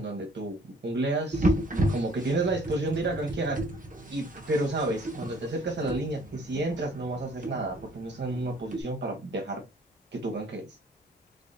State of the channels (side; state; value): both; normal; correlation 0.58